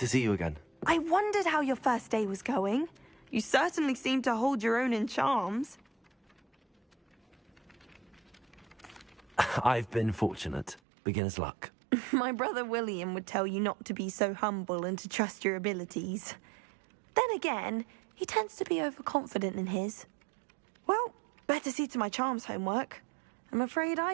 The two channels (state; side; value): drops out; left; at 10.8 s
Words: see you again. I wondered how your first day was going. You certainly seem to hold your own in charms. I've been fortunate. Beginner's luck. My brother William would tell you not to be so humble and to trust your abilities. Then again, he tends to be overconfident in his. Well, better see to my charms homework. I'm afraid